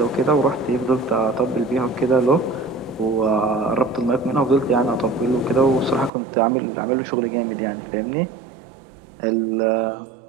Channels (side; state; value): left; drops out; at 6.1 s